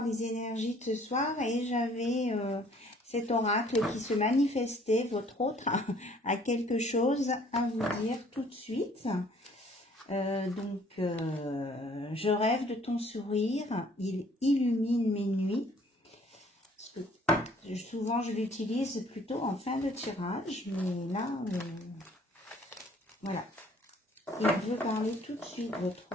les énergies de ce soir. Et j'avais cet oracle qui se manifestait, votre autre, a quelque chose à vous dire tout de suite. Je rêve de ton sourire, il illumine mes nuits. Parce que souvent, je l'utilise plutôt en fin de tirage, mais là, voilà. Il veut parler tout de suite, votre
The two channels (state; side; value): normal; both; correlation 0.58